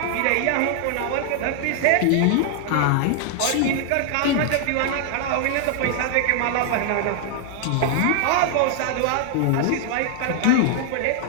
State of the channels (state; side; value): different; both; correlation 0.00